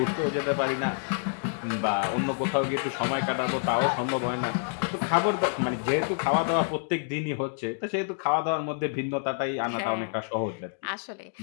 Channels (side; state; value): right; silent; digital silence